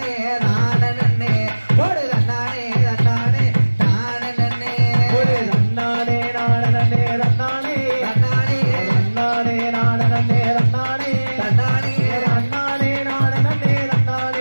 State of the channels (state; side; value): inverted; both; correlation -1.00